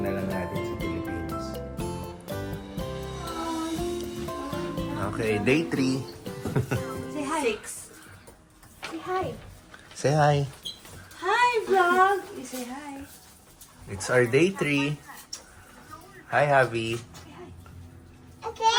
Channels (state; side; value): identical; both; correlation 1.00